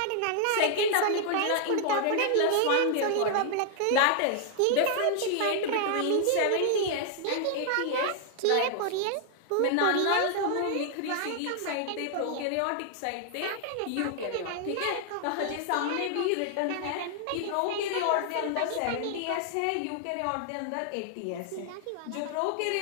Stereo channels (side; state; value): both; different; correlation 0.00